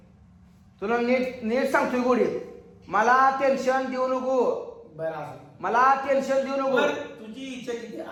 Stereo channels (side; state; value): both; identical; correlation 1.00